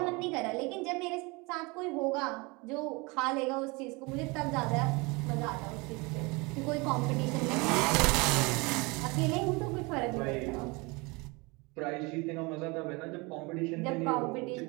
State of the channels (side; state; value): left; quieter; 26.7 dB